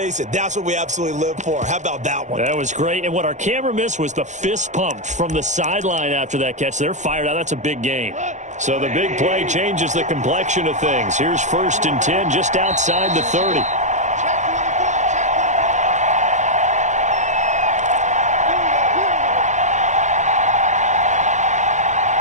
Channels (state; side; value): late; left; 0.35 ms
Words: it, that's what we absolutely live for. How about that one? That was great. And what our camera missed was the fist pump from the sideline after that catch. They're fired out. That's a big game. So the big play changes the complexion of things. Here's 1st and 10 just outside the 30.